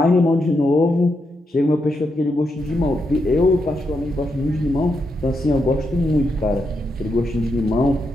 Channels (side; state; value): both; normal; correlation 0.83